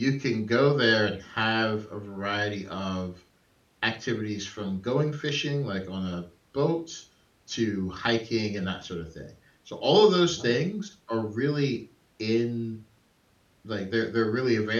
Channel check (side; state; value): both; identical; correlation 1.00